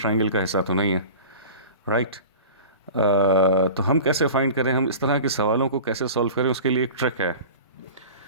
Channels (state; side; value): inverted; both; correlation -0.37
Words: का हिस्सा तो नहीं है, राइट। तो हम कैसे फाइंड करें, हम इस तरह के सवालों को कैसे सॉल्व करें, उसके लिए एक ट्रिक है।